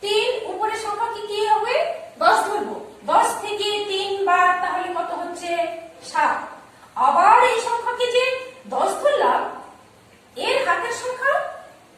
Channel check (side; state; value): both; identical; correlation 1.00